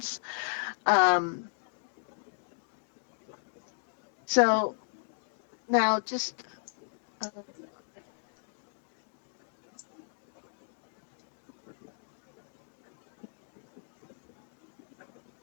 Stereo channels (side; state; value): right; silent; digital silence